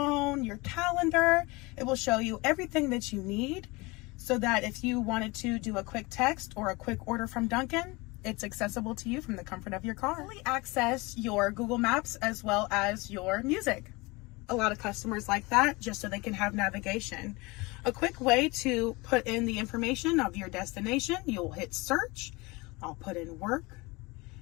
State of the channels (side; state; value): right; quieter; 24.4 dB